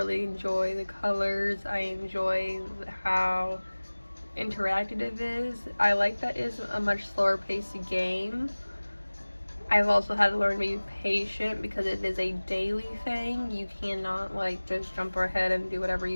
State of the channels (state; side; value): inverted; both; correlation -1.00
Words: enjoy the colors, I enjoy how interactive it is. I like that it's a much slower paced game. I've also had to learn to be patient because it is a daily thing. You cannot just jump ahead and do whatever